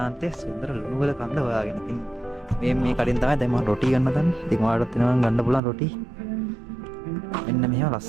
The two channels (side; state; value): left; drops out; at 5.6 s